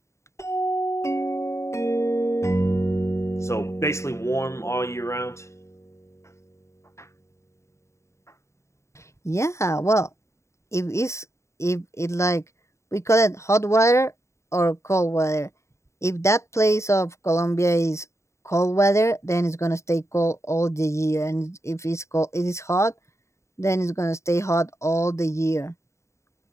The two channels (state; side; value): late; right; 0.14 ms